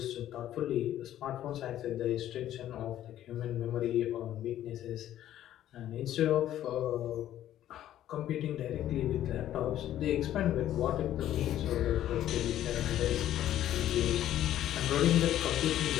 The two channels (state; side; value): quieter; right; 12.3 dB